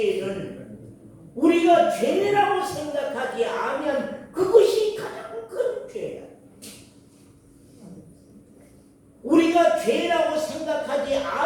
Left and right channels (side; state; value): both; identical; correlation 1.00